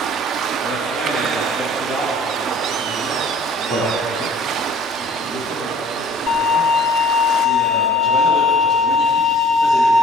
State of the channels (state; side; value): normal; both; correlation 0.52